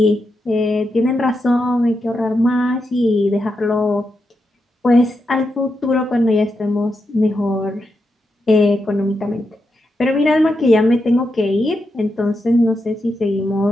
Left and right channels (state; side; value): normal; both; correlation 0.86